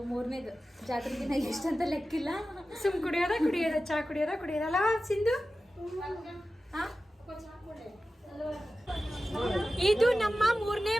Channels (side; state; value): both; normal; correlation 0.94